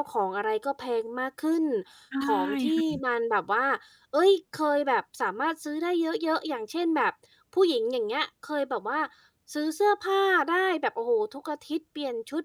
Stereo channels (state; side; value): identical; both; correlation 1.00